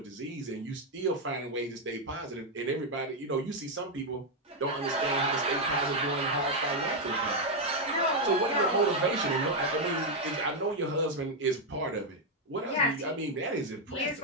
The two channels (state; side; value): normal; both; correlation 0.02